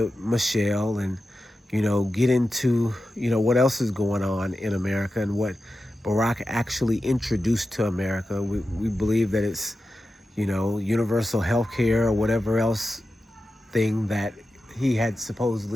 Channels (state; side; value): normal; both; correlation 0.92